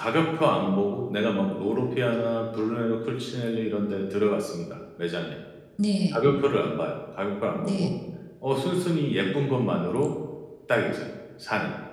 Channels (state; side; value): identical; both; correlation 1.00